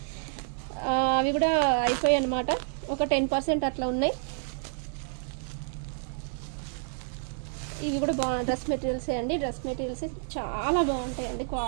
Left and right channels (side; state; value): left; silent; 57 dB below the other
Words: అవి కూడా అయిపోయాయి అనమాట, ఒక 10% అట్లా ఉన్నాయి. ఇవి కూడా డ్రెస్ మెటీరియల్సే అండి, డ్రెస్ మెటీరియల్స్ చాలా బాగుంటాయండి,